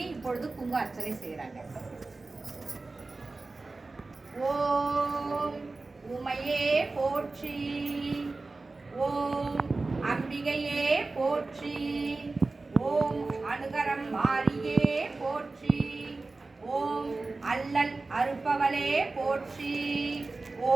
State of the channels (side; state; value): left; quieter; 3.5 dB